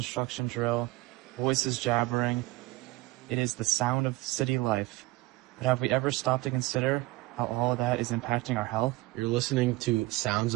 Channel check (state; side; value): quieter; left; 20.1 dB